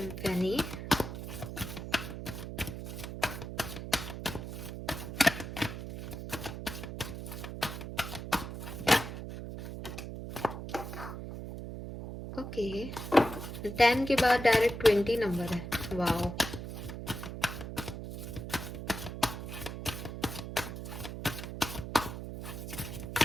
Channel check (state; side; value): noise; right; hum, 7 dB below the sound